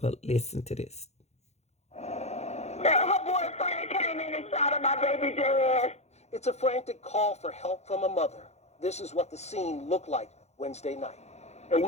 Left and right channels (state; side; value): late; right; 0.32 ms